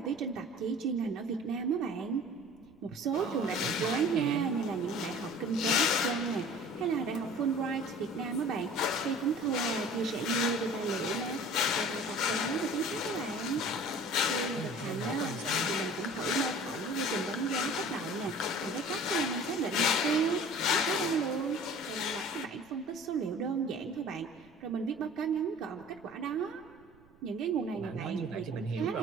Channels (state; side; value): noise; right; rumble, 29 dB below the sound